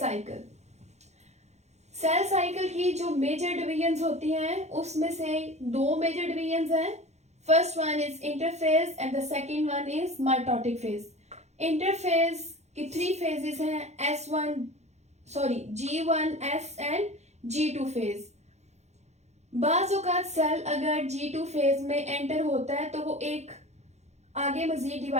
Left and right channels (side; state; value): left; late; 0.32 ms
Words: Cell cycle की जो मेजर डिवीजन्स होती हैं उसमें से दो मेजर डिवीजन्स हैं। First one is interphase and the second one is mitotic phase. Interphase की 3 फेजेस हैं, G1, S and G2 phase. बाज़ औक़ात सेल अगर G2 फेज में एंटर होता है तो वो एक आगे मजीद